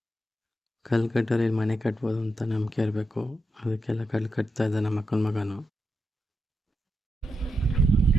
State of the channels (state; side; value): normal; both; correlation 0.86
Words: ಕಲ್ಲು ಕಟ್ಟೋರು ಮನೆ ಕಟ್ಬೋದು ಅಂತ ನಂಬಿಕೆ ಇರಬೇಕು, ಅದಕ್ಕೆಲ್ಲ ಕಲ್ಲು ಕಟ್ತಾ ಇದ್ದ ನಮ್ಮ ಅಕ್ಕನ ಮಗನು.